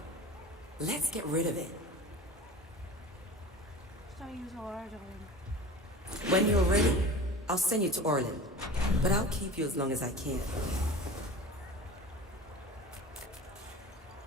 Let's get rid of it. Should I use Orlando? When you're ready, I'll send you to Orland. But I'll keep you as long as I can.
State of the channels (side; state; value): both; normal; correlation 0.37